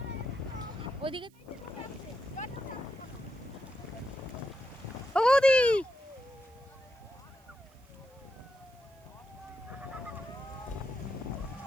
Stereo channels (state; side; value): noise; right; hiss, 30 dB below the sound